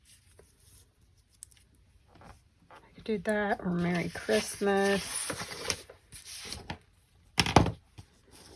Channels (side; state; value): both; identical; correlation 1.00